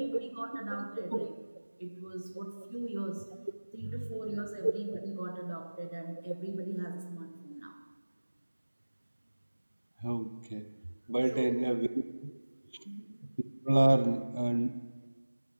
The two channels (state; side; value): inverted; both; correlation -1.00